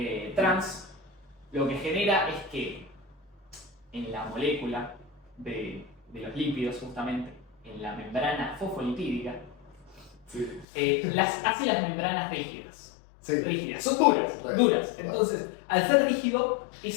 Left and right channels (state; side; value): drops out; right; at 10.7 s